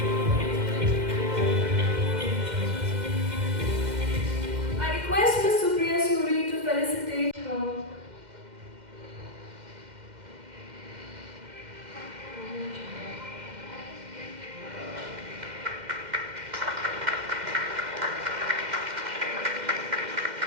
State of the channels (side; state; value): left; late; 2.1 ms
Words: I request Ms. Supriya Suri to felicitate her.